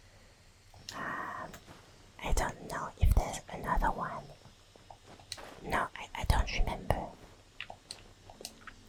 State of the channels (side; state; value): both; identical; correlation 1.00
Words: I don't know if there's another one. No, I don't remember.